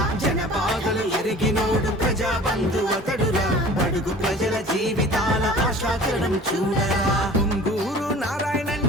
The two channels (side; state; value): both; normal; correlation 0.44